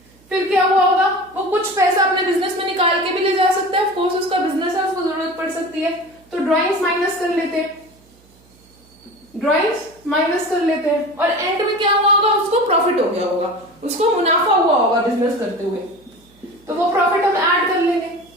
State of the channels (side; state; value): right; noise; hum, 30 dB below the sound